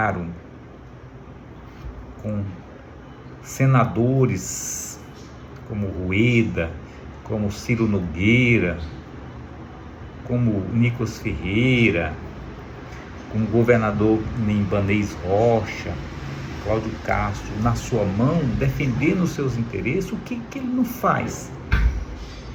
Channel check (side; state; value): both; identical; correlation 1.00